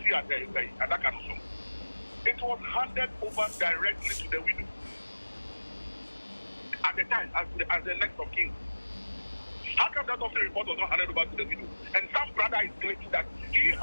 It was handed over directly to the widow at the time as the next of kin. How come that officer report was not handed over to the widow? And some brother is claiming that he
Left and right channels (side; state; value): both; inverted; correlation -1.00